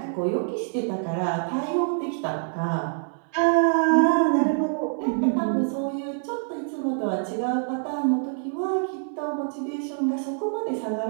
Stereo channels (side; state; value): left; silent; digital silence